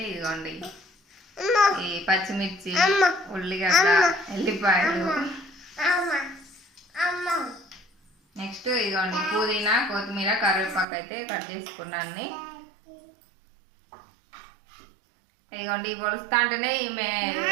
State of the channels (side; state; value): left; drops out; at 10.9 s